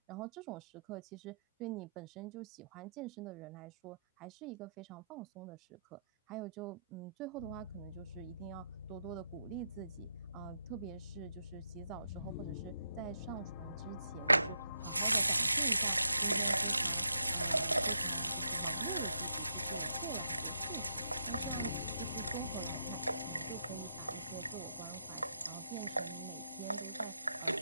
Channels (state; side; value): inverted; both; correlation -0.80